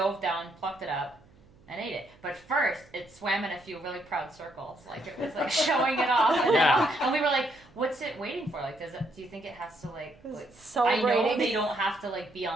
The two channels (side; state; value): right; noise; hum, 27 dB below the sound